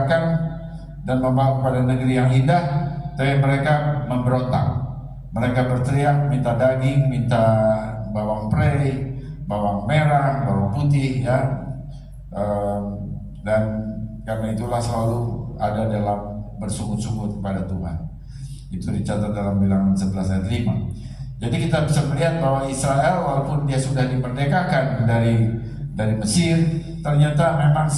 dan membawa kepada negeri yang indah, tapi mereka memberontak. Mereka berteriak, minta daging, minta bawang prei, bawang merah, bawang putih, ya. Dan karena itulah selalu ada dalam bersungut-sungut kepada Tuhan. Itu dicatat dalam Bilangan 11 ayat 5. Jadi kita bisa melihat bahwa Israel walaupun dia sudah dimerdekakan dari Mesir, ternyata memang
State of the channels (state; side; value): identical; both; correlation 1.00